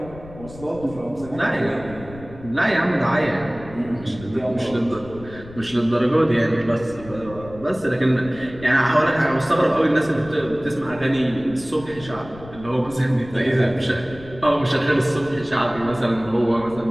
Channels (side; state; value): left; noise; rumble, 17 dB below the sound